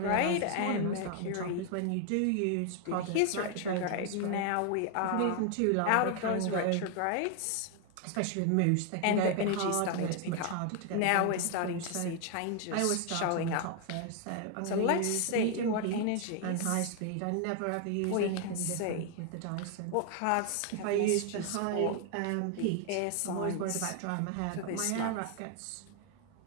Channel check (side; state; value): both; different; correlation 0.00